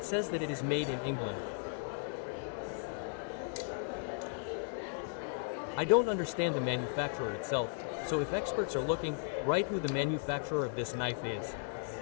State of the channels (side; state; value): right; silent; digital silence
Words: says that it is made in England. I don't understand the manufacturer itself, so if experts are looking, write who the manufacturer of this knife is.